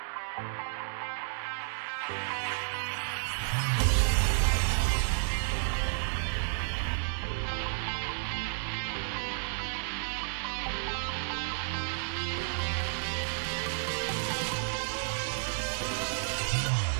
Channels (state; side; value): silent; left; digital silence